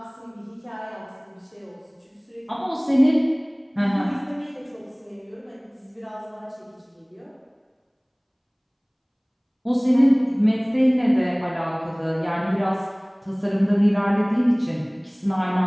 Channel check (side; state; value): both; identical; correlation 1.00